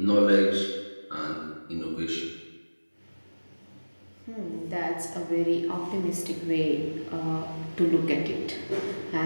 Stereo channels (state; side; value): inverted; both; correlation -1.00